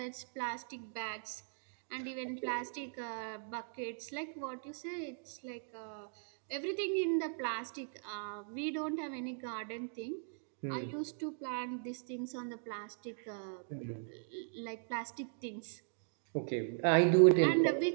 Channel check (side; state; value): left; silent; digital silence